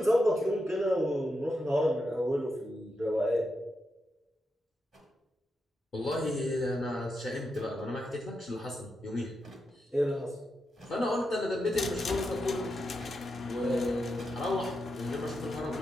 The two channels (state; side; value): normal; both; correlation 0.86